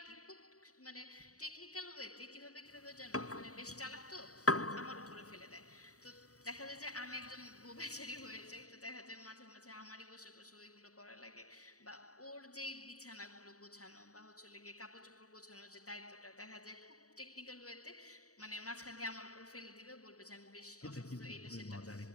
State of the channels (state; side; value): late; right; 0.66 ms